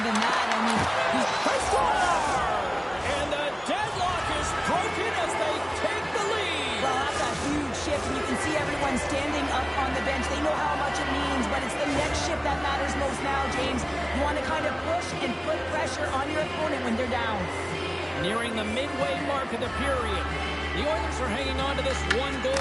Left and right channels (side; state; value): both; identical; correlation 1.00